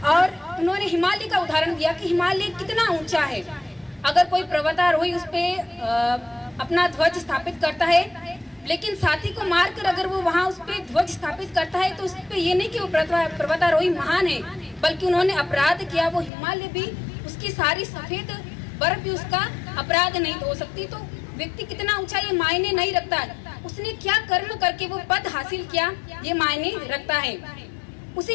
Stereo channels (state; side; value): drops out; right; at 16.3 s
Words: और उन्होंने हिमालय का उदाहरण दिया कि हिमालय कितना ऊंचा है, अगर कोई पर्वतारोही उस पे अपना ध्वज स्थापित करता है, लेकिन साथी को मारकर अगर वो वहाँ उस पे ध्वज स्थापित करता है तो उस पे ये नहीं कि वो पर्वतारोही महान है, बल्कि उन्होंने अपराध किया। वो हिमालय भी, उसकी सारी सफेद बर्फ भी उसका अपराध नहीं हो सकती। तो व्यक्ति कितना ऊंचा ये मायने नहीं रखता है, उसने क्या कर्म करके वो पद हासिल किया ये मायने रखता है।